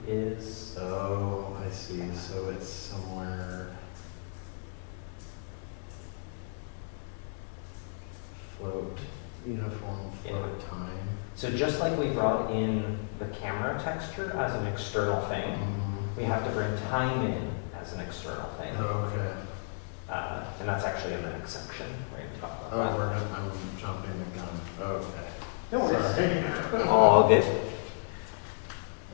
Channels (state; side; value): silent; right; digital silence